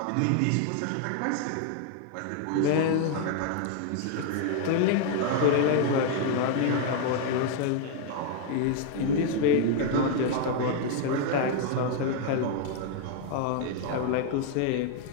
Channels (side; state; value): both; different; correlation 0.00